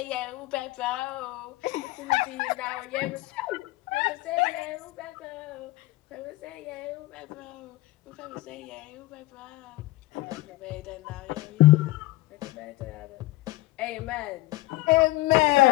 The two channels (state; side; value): quieter; right; 18.8 dB